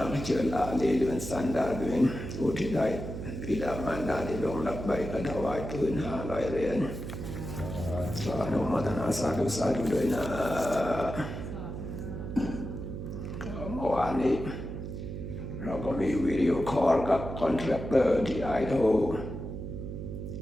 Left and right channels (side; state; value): right; noise; hum, 7 dB below the sound